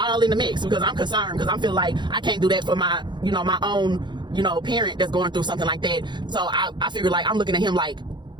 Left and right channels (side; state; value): left; late; 0.22 ms